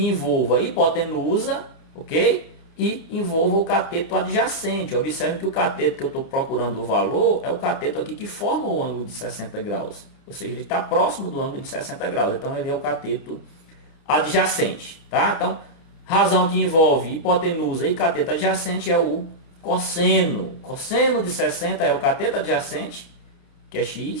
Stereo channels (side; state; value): right; late; 29 ms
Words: envolva a hipotenusa, ok? E envolva o cateto adjacente. Observe que o cateto que eu estou procurando o valor é o cateto aqui que forma o ângulo de 60 graus. Ou seja, ele está próximo do ângulo de 60 graus. Então, ele é o cateto adjacente. Tá? Então, razão que envolve hipotenusa e cateto adjacente é o cosseno. Cosseno de 60 é o cateto adjacente, que é